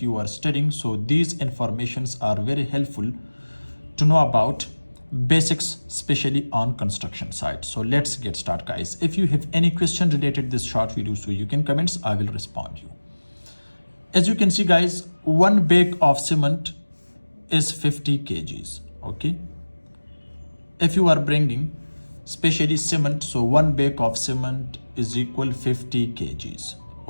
are studying, so these informations are very helpful to know about basics, especially on construction site. So let's get started guys. If you have any question related to this short video, so you can comments, I will respond you. As you can see guys, one bag of cement is 50 kgs. Okay, if you are bringing especially cement, so one bag of cement is equal 50 kgs.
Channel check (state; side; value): inverted; both; correlation -1.00